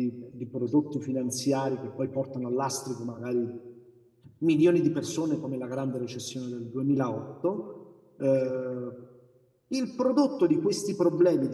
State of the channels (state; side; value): identical; both; correlation 1.00